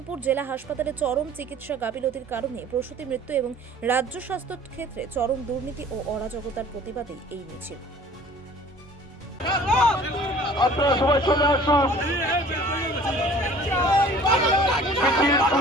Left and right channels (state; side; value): normal; both; correlation 0.49